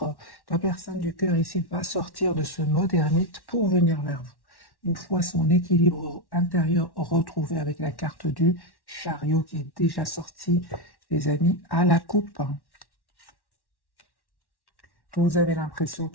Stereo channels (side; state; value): right; late; 1.1 ms